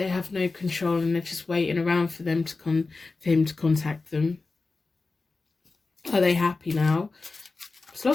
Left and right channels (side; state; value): right; quieter; 3.8 dB